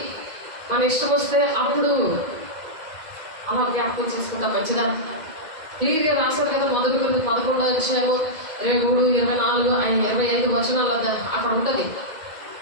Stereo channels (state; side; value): late; left; 2.1 ms